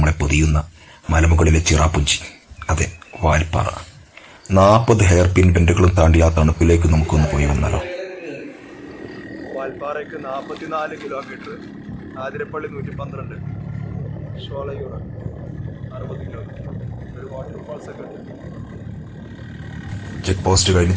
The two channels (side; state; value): both; identical; correlation 1.00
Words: പൊതിയുന്ന മലമുകളിലെ ചിറാപ്പുഞ്ചി, അതെ, വാൽപ്പാറ. 40 ഹെയർ പിൻ ബെൻഡുകളും താണ്ടി ആ തണുപ്പിലേക്ക് നമുക്കൊന്ന് പോയി വന്നാലോ. വാൽപ്പാറയ്ക്ക് 44 കിലോമീറ്റർ, ആതിരപ്പള്ളി 112, ഷോളയൂർ 60 കിലോമീറ്റർ, ഒരു വാട്ടർഫാൾസ് ഒക്കെ ഉണ്ട്. ചെക്ക് പോസ്റ്റ് കഴിഞ്ഞ്